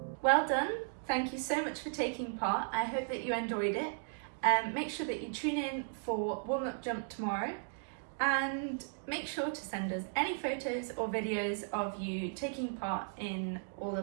Well done. Thank you so much for taking part. I hope that you enjoyed it. Make sure that you tune in for warm-up jump tomorrow and make sure to send us any photos or videos of you taking part in all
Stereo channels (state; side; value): silent; left; digital silence